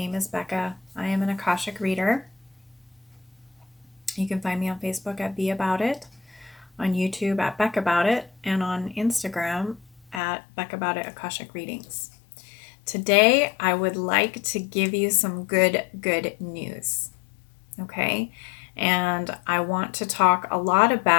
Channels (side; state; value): right; drops out; at 10.2 s